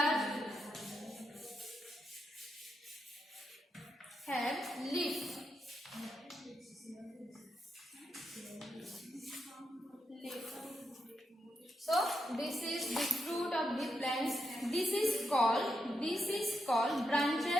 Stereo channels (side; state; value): both; normal; correlation 0.84